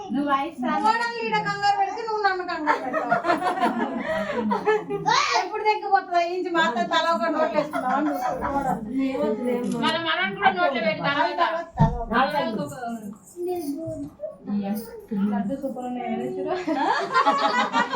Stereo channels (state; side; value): identical; both; correlation 1.00